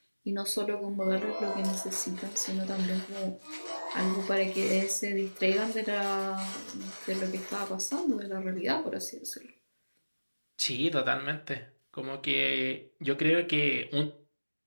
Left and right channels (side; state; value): both; inverted; correlation -1.00